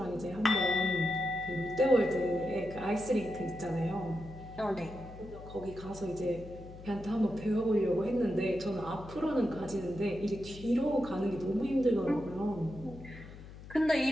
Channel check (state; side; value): noise; left; hum, 15 dB below the sound